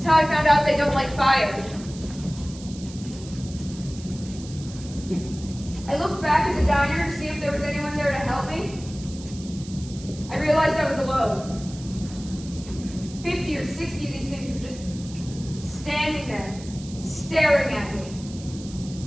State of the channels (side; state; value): right; noise; hiss, 17 dB below the sound